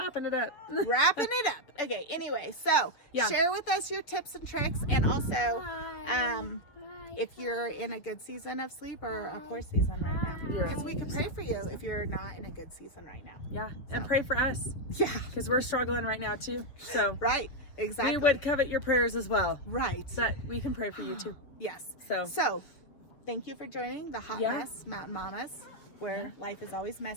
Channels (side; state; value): right; late; 7.1 ms